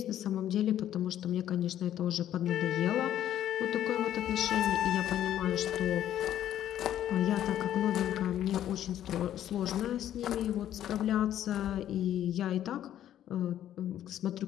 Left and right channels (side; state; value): right; quieter; 11.5 dB